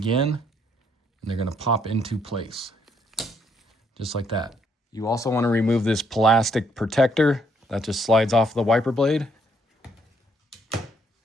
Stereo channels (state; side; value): normal; both; correlation 0.71